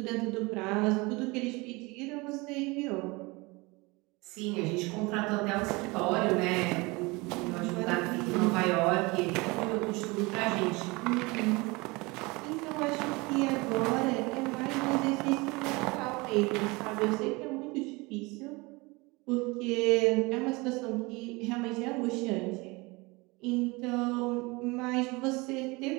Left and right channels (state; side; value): quieter; left; 24.9 dB